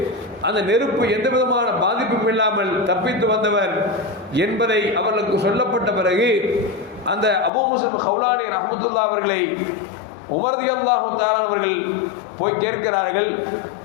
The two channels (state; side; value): drops out; right; at 7.5 s